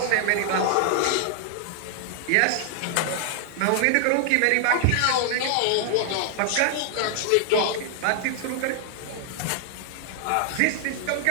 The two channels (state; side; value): different; both; correlation -0.01